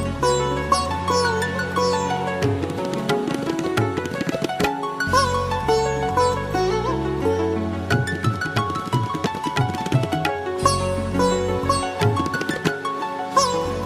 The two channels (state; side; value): identical; both; correlation 1.00